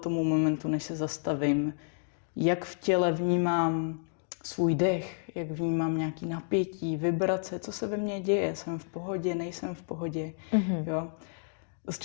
momentu, než se zastavím, jak v těle vnímám svůj dech, jak vnímám nějaký napětí, vibrace, co se ve mně děje, jsem v pohodě, nejsem v pohodě. Jo? Dost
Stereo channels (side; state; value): right; silent; digital silence